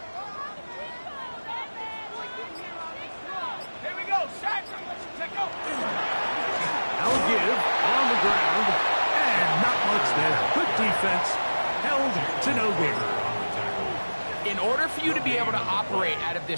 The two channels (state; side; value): inverted; both; correlation -1.00